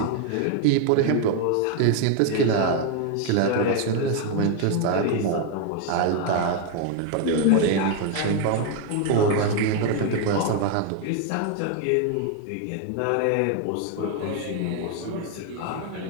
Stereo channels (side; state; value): both; different; correlation 0.01